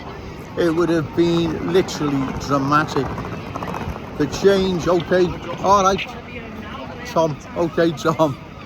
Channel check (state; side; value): identical; both; correlation 1.00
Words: It would have been literally dramatic. The change, okay, all right, Tom, okay, Tom.